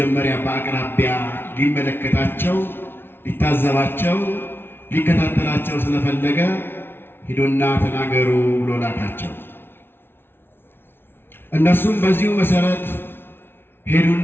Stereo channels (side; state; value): right; late; 0.11 ms